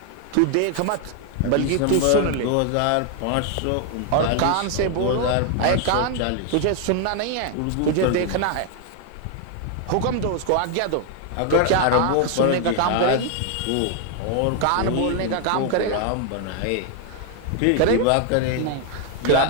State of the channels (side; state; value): both; different; correlation 0.00